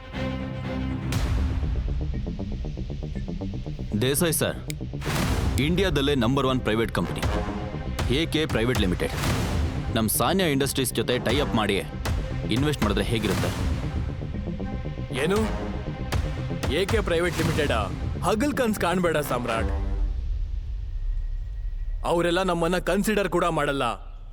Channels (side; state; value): both; identical; correlation 1.00